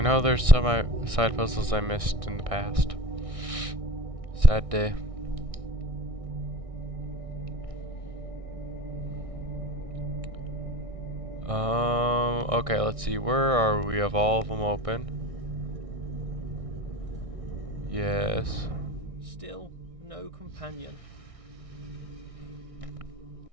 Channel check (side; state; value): left; late; 1.6 ms